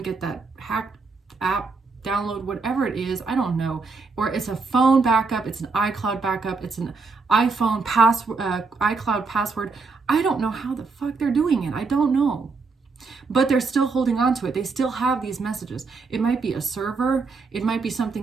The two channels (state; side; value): quieter; left; 4.4 dB